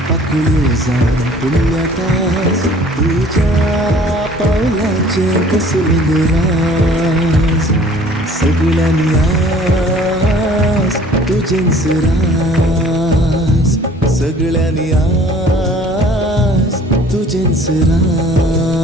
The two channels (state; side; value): normal; both; correlation 0.52